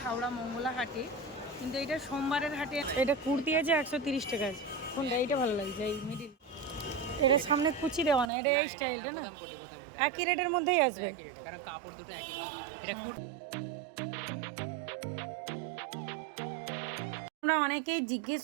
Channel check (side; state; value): left; drops out; at 8.2 s